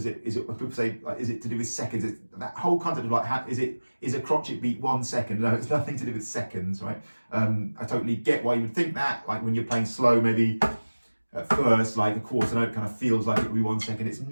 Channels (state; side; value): inverted; both; correlation -1.00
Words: say, like, is it to do with seconds? That whole concept of like, is a crotchet beat 1 second? No, it's nothing to do with seconds, right? I totally get why you would think that, like when you're playing slow, maybe at first, like a quarter note kind of feels like it would be 1 second. It's